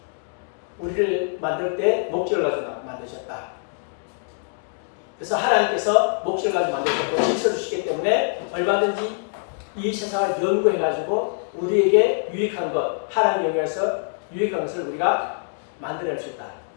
우리를 만들 때 목적을 가지고 만드셨다. 그래서 하나님께서 목적을 가지고 만드셨고 질서를 주시기 때문에 얼마든지 이 세상을 연구해가지고 우리에게 유익한 것, 하나님 영역에서 유익한 것을 우리가 만들어낼 수 있다.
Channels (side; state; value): right; silent; digital silence